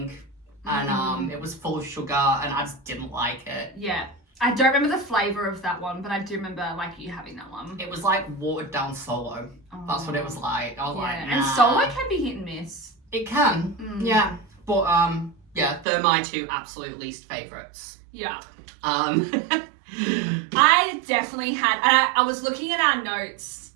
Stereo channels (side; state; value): left; drops out; at 15.9 s